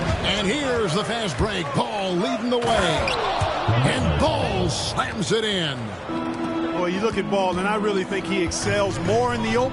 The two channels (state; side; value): identical; both; correlation 1.00